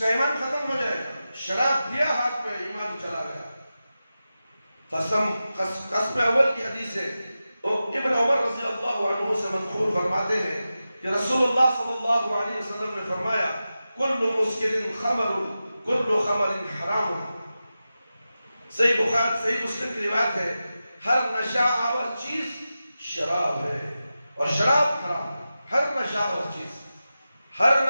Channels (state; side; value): inverted; both; correlation -0.93